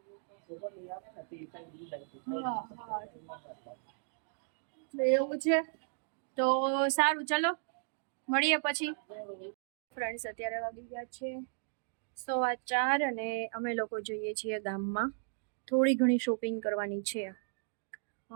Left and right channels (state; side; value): silent; left; digital silence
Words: એવું છે તો સારું, ચલો મળીએ પછી. ફ્રેન્ડ્સ, અત્યારે વાગી ગયા છે 4:15 અને અમે લોકો જઈએ છીએ ગામમાં. થોડી ઘણી શોપિંગ કરવાની છે.